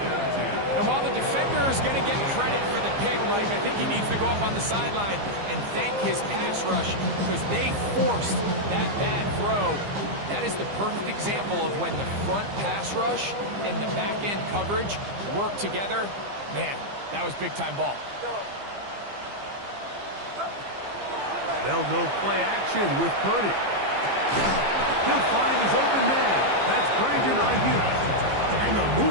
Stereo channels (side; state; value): left; late; 15 ms